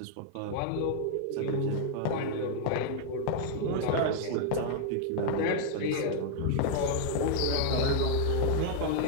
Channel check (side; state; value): both; different; correlation 0.00